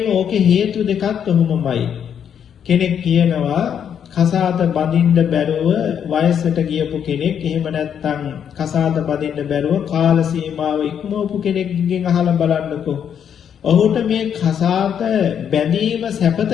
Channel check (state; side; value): quieter; right; 8.4 dB